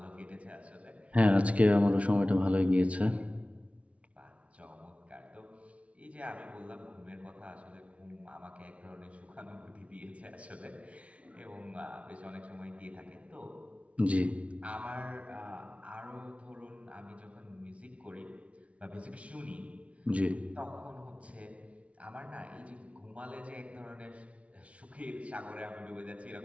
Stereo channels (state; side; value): late; left; 0.064 ms